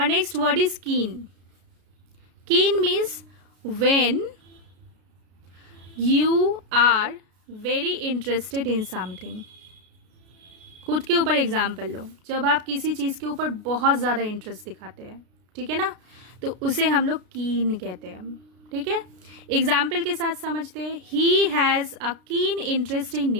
next word is keen. Keen means when you are very interested in something. खुद के ऊपर एग्जाम्पल लो, जब आप किसी चीज़ के ऊपर बहुत ज़्यादा इंटरेस्ट दिखाते हैं, ठीक है ना, तो उसे हम लोग कीन कहते हैं, ठीक है। एग्जाम्पल के साथ समझते हैं। He has a keen interest in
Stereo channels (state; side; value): late; left; 32 ms